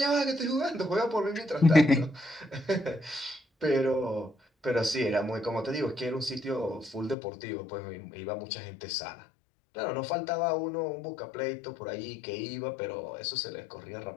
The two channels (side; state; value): right; drops out; at 7.2 s